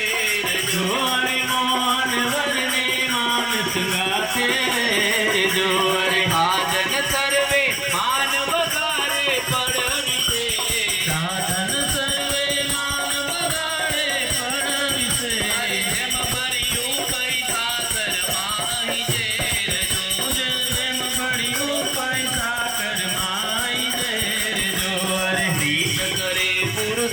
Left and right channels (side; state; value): right; noise; hum, 23 dB below the sound